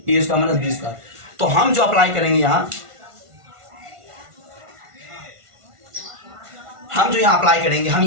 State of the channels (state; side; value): late; left; 1.5 ms